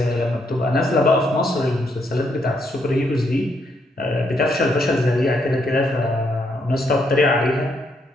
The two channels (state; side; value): normal; both; correlation 0.75